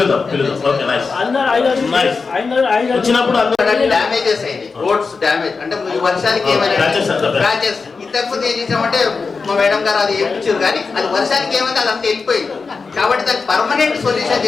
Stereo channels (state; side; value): quieter; right; 4.6 dB